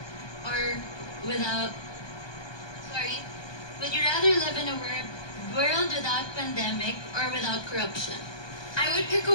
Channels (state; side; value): late; right; 1.2 ms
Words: or without... Sorry. Would you rather live in a world without pandemic or without corruption? I would pick a